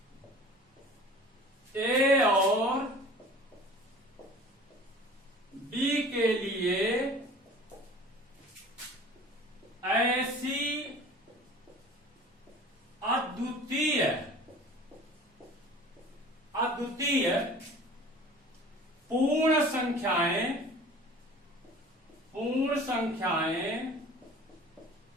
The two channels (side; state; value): both; normal; correlation 0.44